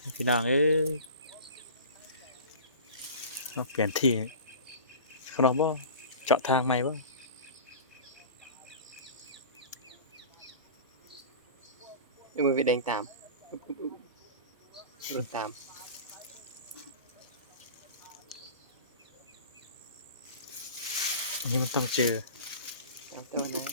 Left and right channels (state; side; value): inverted; both; correlation -0.37